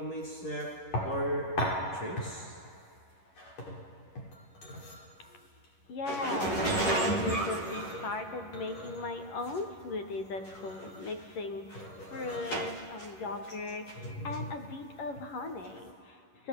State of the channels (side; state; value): right; late; 11 ms